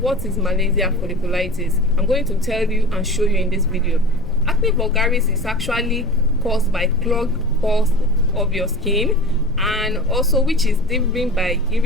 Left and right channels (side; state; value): left; noise; rumble, 11 dB below the sound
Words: what is Malassezia folliculitis? I'm going to tell you and show you in this video. Acne vulgaris is actually caused by clogged pores of your skin, and also which is driven by